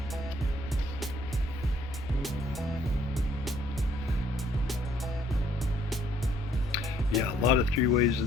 Yeah, a lot of three-ways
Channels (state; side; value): normal; both; correlation 0.64